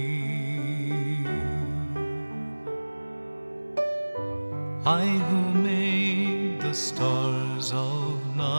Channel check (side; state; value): both; inverted; correlation -1.00